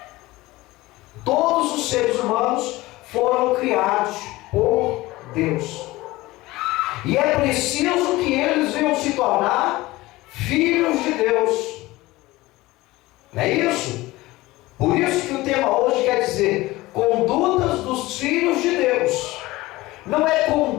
Todos os seres humanos foram criados por Deus. E é preciso que eles venham se tornar filhos de Deus. Não é isso? Por isso que o tema hoje quer dizer condutas dos filhos de Deus. Não é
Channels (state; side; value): quieter; right; 19.3 dB